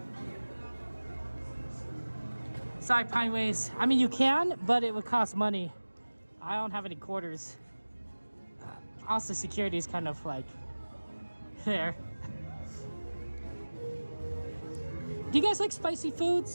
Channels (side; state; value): both; inverted; correlation -1.00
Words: Sorry, Pineways. I mean, you can, but it would cost money. I don't have any quarters. Also, security is kind of like there. Do you guys like spicy